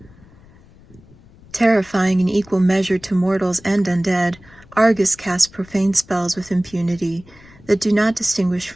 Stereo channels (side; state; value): left; noise; rumble, 25 dB below the sound